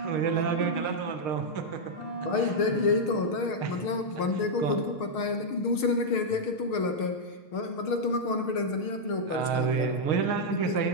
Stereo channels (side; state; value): right; late; 6.5 ms